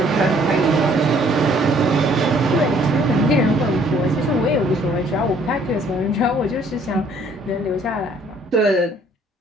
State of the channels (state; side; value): normal; both; correlation 0.61